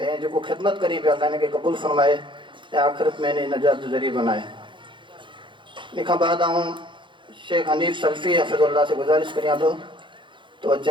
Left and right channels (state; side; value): late; left; 0.23 ms